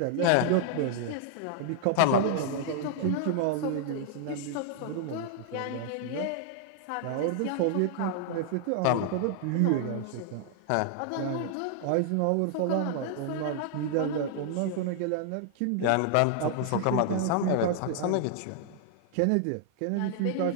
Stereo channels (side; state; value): both; different; correlation -0.01